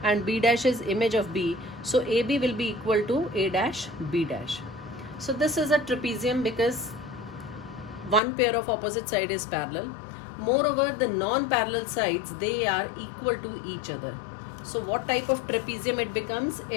and B dash is image of B. So AB will be equal to A dash, B dash. So this is a trapezium because one pair of opposite side is parallel. Moreover, the non-parallel sides, they are equal to each other. So what type of trapezium it becomes?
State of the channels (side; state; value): right; drops out; at 8.2 s